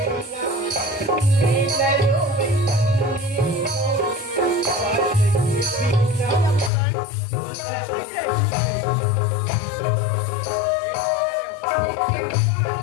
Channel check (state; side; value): drops out; right; at 6.7 s